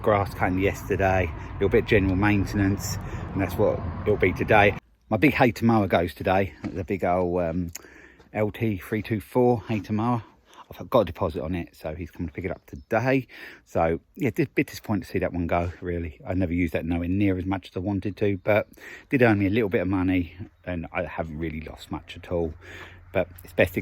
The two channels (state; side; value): identical; both; correlation 1.00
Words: grass cutting yesterday, a little bit of general maintenance, and that's what it'll be today. My big Hayter mower goes today, the big old LT324 Hayter mower. I've got a deposit on it, so he's coming to pick it up today. So yeah, a bit disappointed to see that one go, really. I never used that nowhere near as much as I wanted to, but did earn me a little bit of money, and I haven't really lost much at all. But it's best it